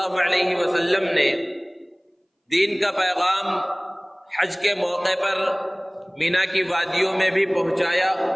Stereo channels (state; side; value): identical; both; correlation 1.00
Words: علیہ وسلم نے دین کا پیغام حج کے موقع پر مینا کی وادیوں میں بھی پہنچایا،